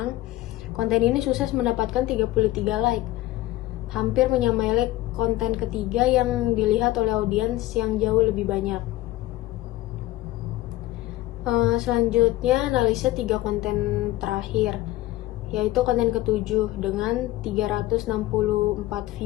konten ini sukses mendapatkan 33 like, hampir menyamai like konten ketiga yang dilihat oleh audiens yang jauh lebih banyak. Selanjutnya analisa 3 konten terakhir, yaitu konten ketujuh dengan 364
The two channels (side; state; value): right; quieter; 16.5 dB